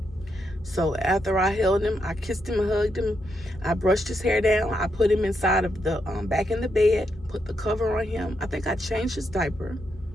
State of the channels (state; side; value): normal; both; correlation 0.81